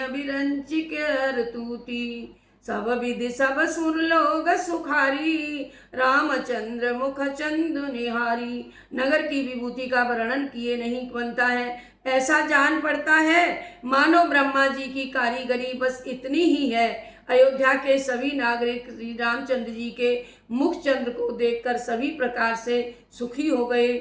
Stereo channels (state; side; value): identical; both; correlation 1.00